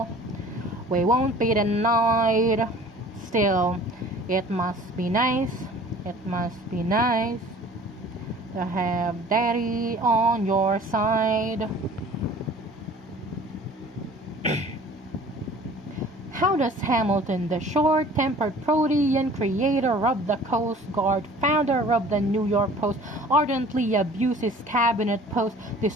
We won't be denied. Still, it must be nice. It must be nice to have daddy on your side. How does Hamilton, the short-tempered Protean creator of the Coast Guard, founder of the New York Post, ardently abuse his cabinet post,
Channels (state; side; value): normal; both; correlation 0.48